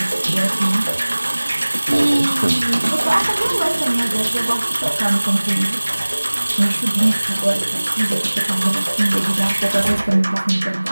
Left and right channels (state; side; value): inverted; both; correlation -1.00